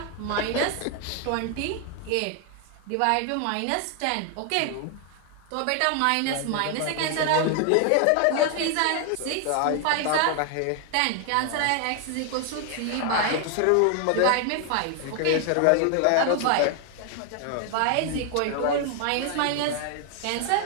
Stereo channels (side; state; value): both; different; correlation 0.00